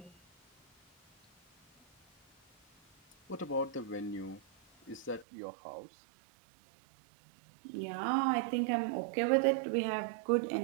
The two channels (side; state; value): left; drops out; at 5.2 s